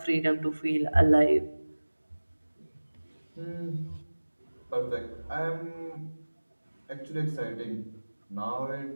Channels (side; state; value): both; inverted; correlation -1.00